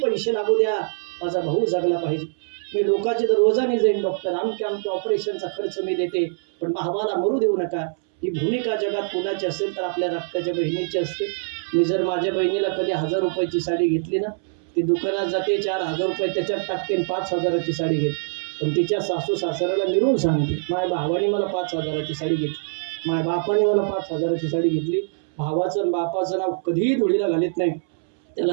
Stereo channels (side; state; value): left; silent; 63 dB below the other